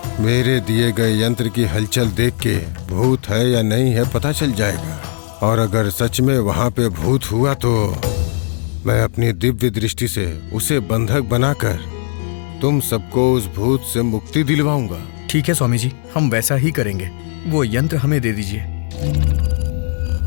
मेरे दिए गए यंत्र की हलचल देख के भूत है या नहीं है पता चल जाएगा। और अगर सच में वहां पे भूत हुआ तो मैं अपनी दिव्य दृष्टि से उसे बंधक बनाकर तुम सबको उस भूत से मुक्ति दिलवाऊंगा। ठीक है स्वामी जी, हम वैसा ही करेंगे। वो यंत्र हमें दे दीजिए।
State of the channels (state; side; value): silent; right; digital silence